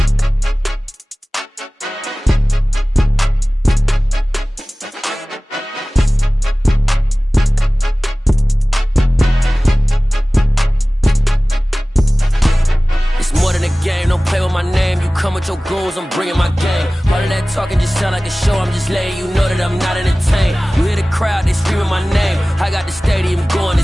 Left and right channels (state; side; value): normal; both; correlation 0.98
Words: More than a game, don't play with my name. You come with your goons, I'm bringing my game. All of that talking just sound like a show. I'm just letting you know that I'm not entertained. You hear the crowd, they screaming my name. I got the stadium going